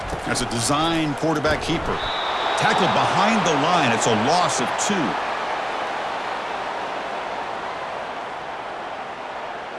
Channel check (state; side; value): identical; both; correlation 1.00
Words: That's a design quarterback keeper. Tackled behind the line. It's a loss of 2.